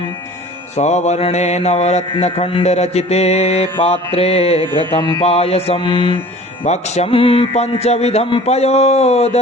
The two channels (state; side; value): normal; both; correlation 0.45